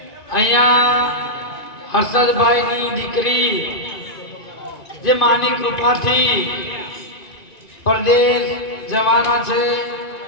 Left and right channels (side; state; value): right; late; 2.5 ms